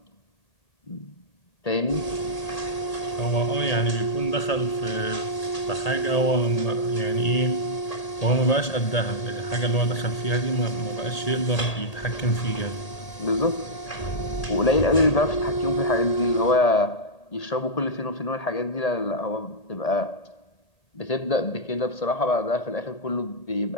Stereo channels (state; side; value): late; right; 1.8 ms